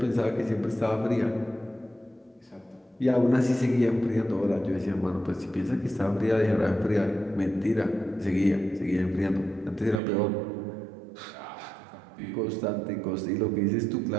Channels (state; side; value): drops out; left; at 10.0 s